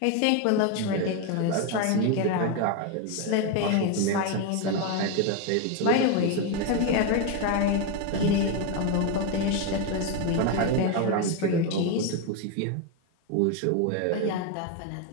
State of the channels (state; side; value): different; both; correlation 0.02